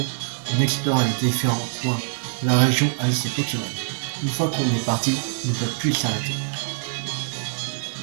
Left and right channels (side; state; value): left; silent; 59 dB below the other